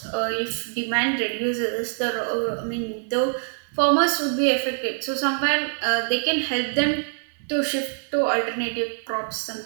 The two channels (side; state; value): left; silent; digital silence